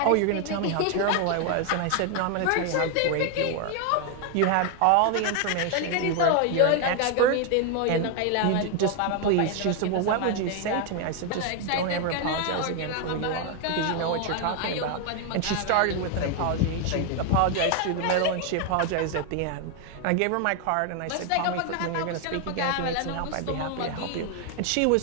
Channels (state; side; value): different; both; correlation 0.01